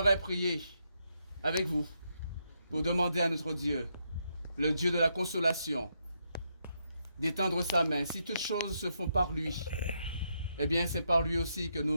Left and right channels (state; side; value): inverted; both; correlation -0.79